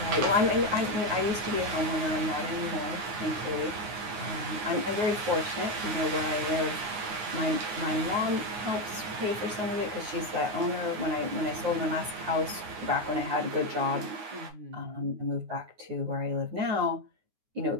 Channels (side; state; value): left; late; 9.6 ms